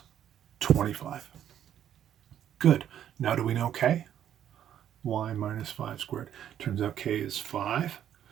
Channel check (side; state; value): left; quieter; 10.3 dB